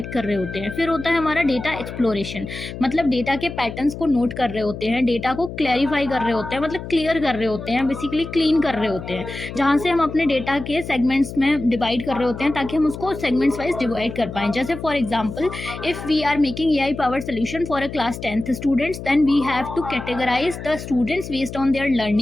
कर रहे होते हैं। फिर होता है हमारा डेटा एक्सप्लोरेशन, मतलब डेटा के पैटर्न्स को नोट कर रहे होते हैं, डेटा को क्लैरिफाई कर रहे होते हैं, मतलब क्लियर कर रहे होते हैं, बेसिकली क्लीन कर रहे होते हैं, जहाँ से हम अपने डेटा के सेगमेंट्स में डिवाइड कर रहे होते हैं ताकि हम उसको सेगमेंट्स वाइज डिवाइड कर पाएँ। जैसे for example, if we are making AI power solution for a class 10th students, then we have to categorize the students based on their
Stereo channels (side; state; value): left; noise; hum, 10 dB below the sound